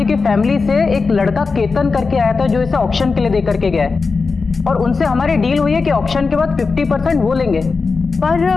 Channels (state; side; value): quieter; right; 4.5 dB